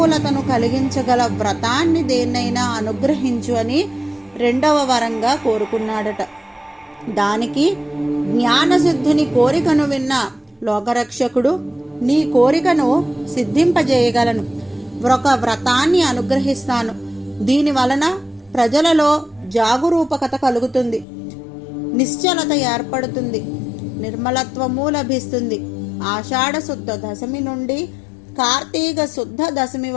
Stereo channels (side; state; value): right; drops out; at 21.1 s